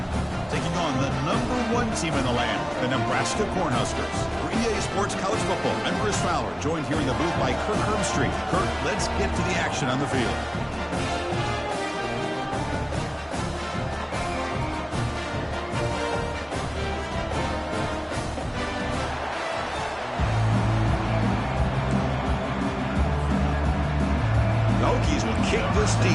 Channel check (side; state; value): both; identical; correlation 1.00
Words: taking on the number 1 team in the land, the Nebraska Cornhuskers. For EA Sports College Football, I'm Chris Fowler, joined here in the booth by Kirk Herbstreit. Kirk, let's get to the action on the field. The Hokies will kick this